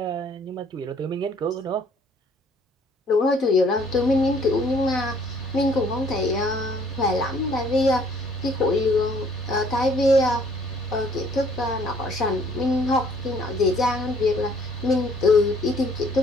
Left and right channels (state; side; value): normal; both; correlation 0.60